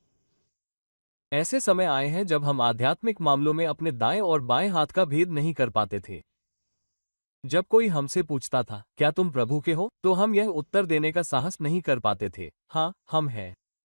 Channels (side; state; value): both; inverted; correlation -1.00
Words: ऐसे समय आए हैं जब हम आध्यात्मिक मामलों में अपने दाएं और बाएं हाथ का भेद नहीं कर पाते थे। जब कोई हमसे पूछता था, क्या तुम प्रभु के हो, तो हम यह उत्तर देने का साहस नहीं कर पाते थे, हाँ, हम हैं।